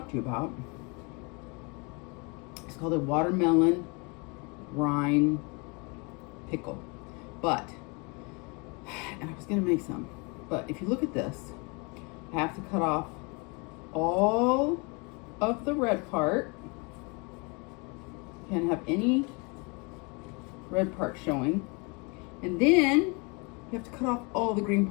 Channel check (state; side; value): quieter; right; 30.9 dB